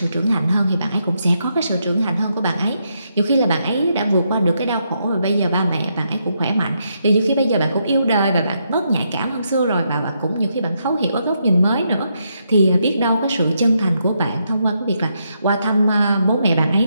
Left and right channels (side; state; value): both; inverted; correlation -0.79